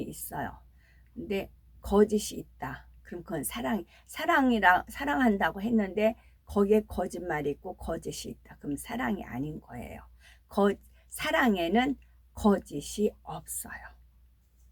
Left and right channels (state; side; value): identical; both; correlation 1.00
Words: 있어요. 근데 거짓이 있다. 그럼 그건 사랑한다고 했는데 거기에 거짓말이 있고 거짓이 있다. 그럼 사랑이 아닌 거예요. 사랑에는 거짓이 없어요.